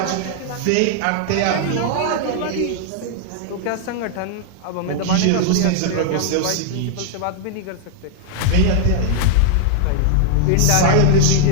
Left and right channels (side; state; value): both; different; correlation -0.01